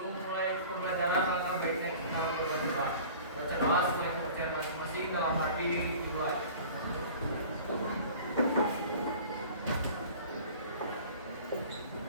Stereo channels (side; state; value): both; inverted; correlation -0.43